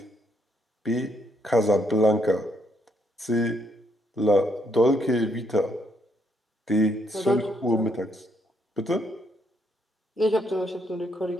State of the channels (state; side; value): normal; both; correlation 0.73